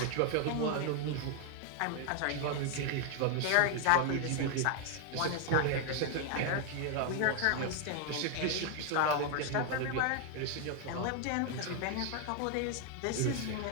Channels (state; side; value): different; both; correlation 0.00